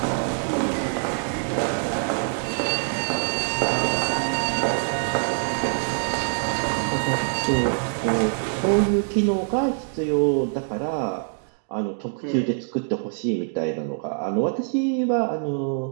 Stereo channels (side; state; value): left; silent; digital silence